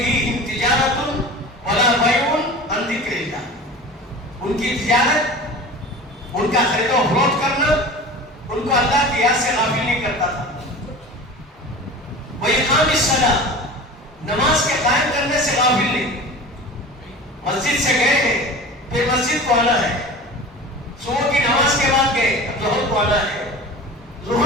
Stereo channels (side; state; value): both; normal; correlation 0.35